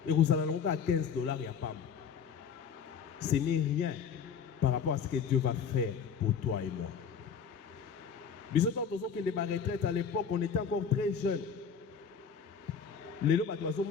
Et vous allez à $15 il y a pas. Ce n'est rien par rapport à ce que Dieu va faire pour toi et moi. Nous avons que les retraites à l'époque, on était encore très jeunes. Mais nous,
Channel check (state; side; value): quieter; right; 6.8 dB